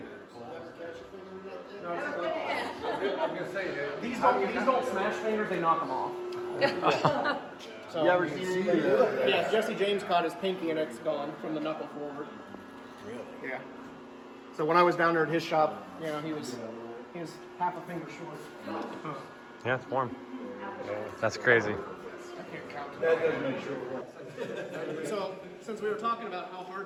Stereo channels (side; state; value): both; identical; correlation 1.00